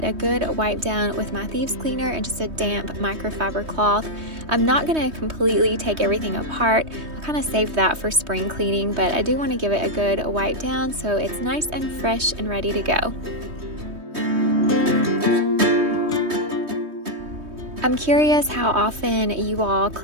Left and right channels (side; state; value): left; late; 3.2 ms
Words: a good wipe down with my thieves cleaner and just a damp microfiber cloth. I'm not gonna completely take everything apart. I'll kind of save that for spring cleaning, but I do want to give it a good wipe down so it's nice and fresh and ready to go. I'm curious how often you all